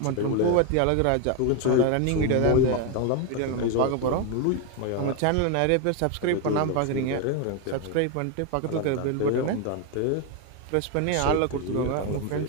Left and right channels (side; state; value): both; different; correlation 0.01